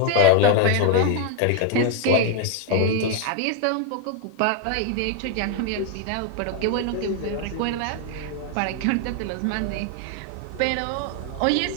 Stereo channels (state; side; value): different; both; correlation 0.01